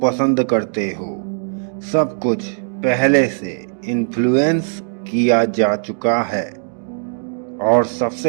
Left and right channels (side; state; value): left; silent; digital silence